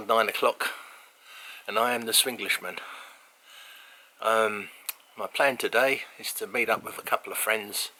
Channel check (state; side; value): identical; both; correlation 1.00